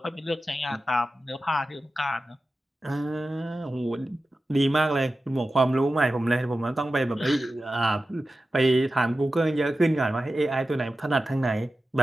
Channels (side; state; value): both; normal; correlation 0.94